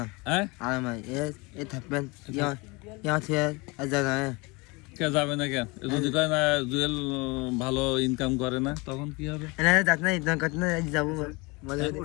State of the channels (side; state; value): right; quieter; 26.4 dB